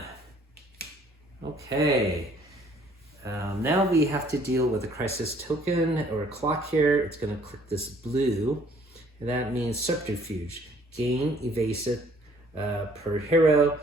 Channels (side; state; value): both; normal; correlation 0.59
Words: Okay. Now we have to deal with a crisis token or a clock here. It's going to click this blue, and that means subterfuge. Gain evasive per hero.